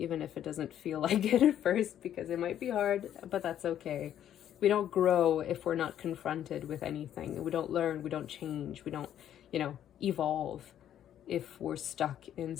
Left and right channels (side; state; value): right; quieter; 10.7 dB